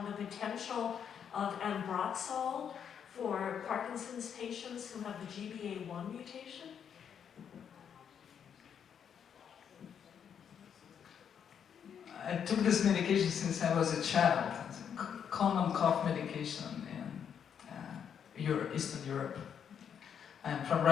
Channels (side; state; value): right; quieter; 8.0 dB